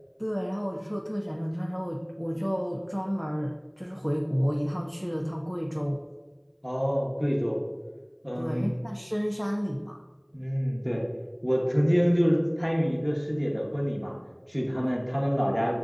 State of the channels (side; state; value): both; identical; correlation 1.00